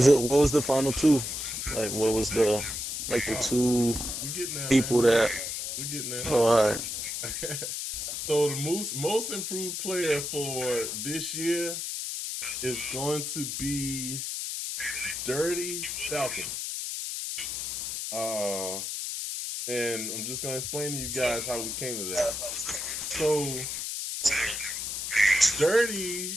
was the final 2? Like, what was the 2 we're getting there, people man. We're getting there. Oh, all right. So the most improved player for this year is going to be Dirty Falcon. And I'm just gonna explain to you guys how we came to that. So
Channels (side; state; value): left; noise; hiss, 4 dB below the sound